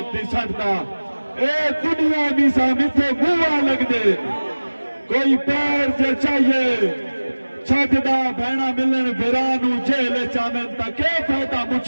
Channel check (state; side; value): inverted; both; correlation -1.00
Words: دی سٹدا اے دنیا بھی سامتے گوا لگ دے کوئی پیر جے چاہیے چھٹدا بھینا ملن بھرانو جیل چامن تا کے فائدہ